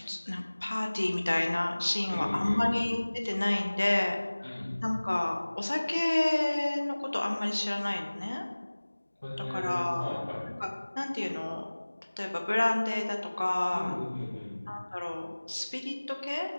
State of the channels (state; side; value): inverted; both; correlation -1.00